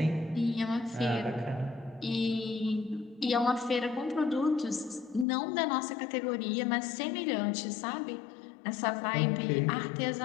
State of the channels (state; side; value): drops out; right; at 5.2 s